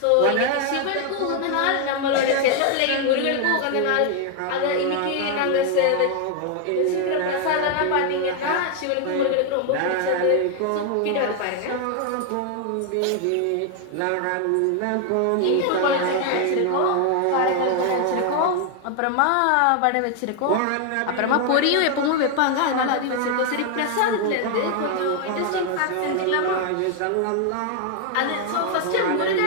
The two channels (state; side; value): different; both; correlation 0.00